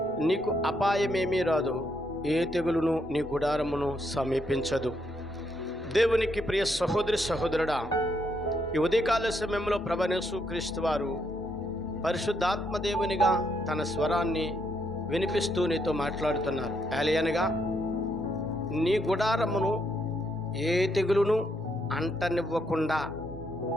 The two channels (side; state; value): both; normal; correlation 0.76